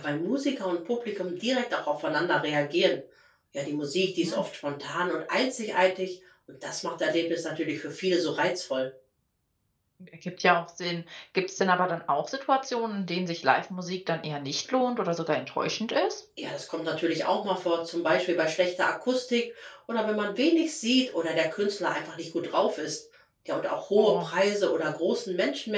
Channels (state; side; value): identical; both; correlation 1.00